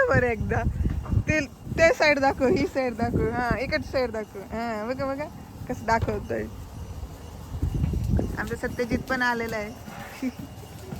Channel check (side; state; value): both; identical; correlation 1.00